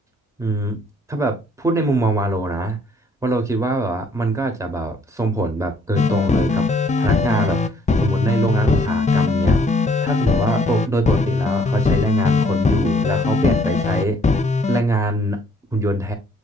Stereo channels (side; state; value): both; normal; correlation 0.63